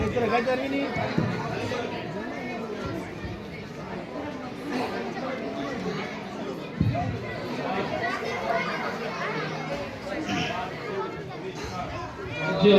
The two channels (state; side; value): identical; both; correlation 1.00